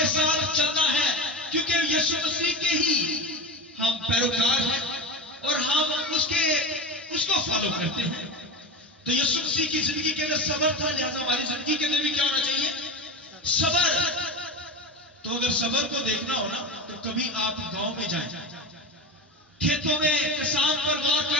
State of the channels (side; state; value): both; normal; correlation 0.23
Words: ساتھ چلنا ہے کیونکہ یسوع مسیح کے ہی ہم پیروکار ہیں اور ہم اس کو فالو کرتے ہیں. تو یسوع مسیح کی زندگی کے اندر صبر تھا، لہذا ہماری زندگی کے اندر بھی کیا ہونا چاہیے؟ صبر. تو اگر صبر کو دیکھنا ہو نا تو کبھی آپ گاؤں میں جائیں، کھیتوں میں کسان پر غور